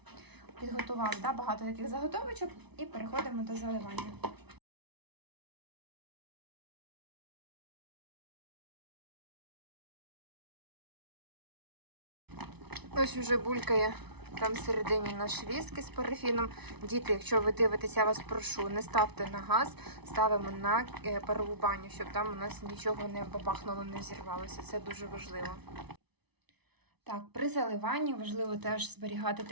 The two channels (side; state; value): left; late; 0.99 ms